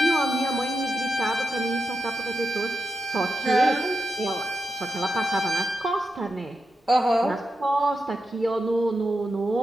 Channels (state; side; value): normal; both; correlation 0.88